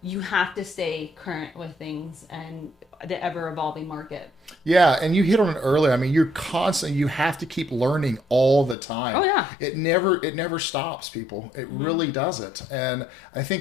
you have to stay current with things and the ever evolving market. Yeah, and you hit on it earlier. I mean, you have to keep learning all the time. Oh yeah. It never stops, people. It really doesn't. And I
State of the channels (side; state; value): right; drops out; at 8.8 s